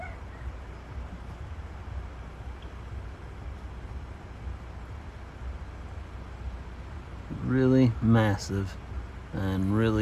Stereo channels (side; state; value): both; identical; correlation 1.00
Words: Really massive and